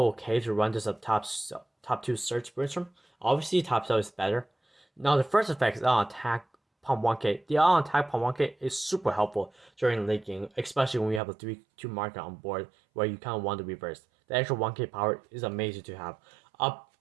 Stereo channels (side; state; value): left; drops out; at 11.2 s